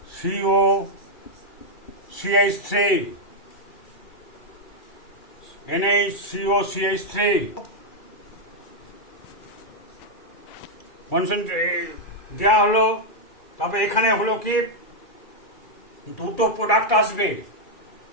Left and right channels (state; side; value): late; right; 2.4 ms